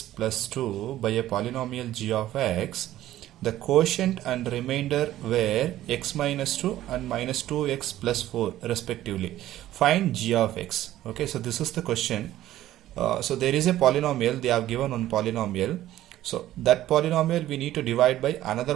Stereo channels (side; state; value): left; quieter; 13.9 dB